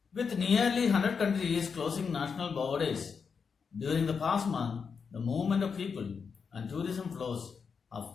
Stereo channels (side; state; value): right; quieter; 5.9 dB